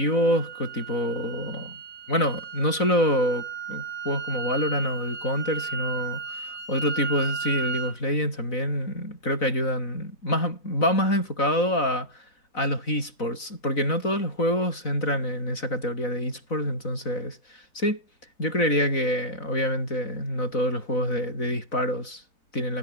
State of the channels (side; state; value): right; late; 4.0 ms